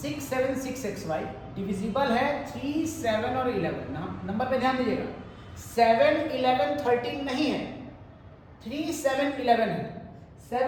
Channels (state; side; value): identical; both; correlation 1.00